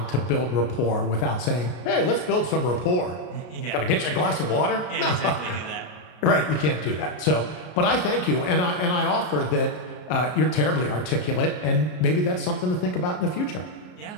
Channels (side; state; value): right; late; 33 ms